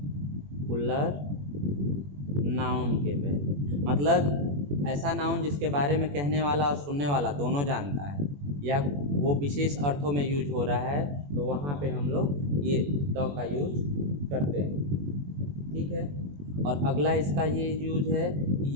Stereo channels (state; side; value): late; left; 21 ms